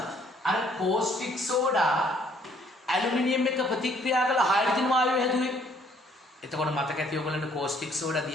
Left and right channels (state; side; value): normal; both; correlation 0.63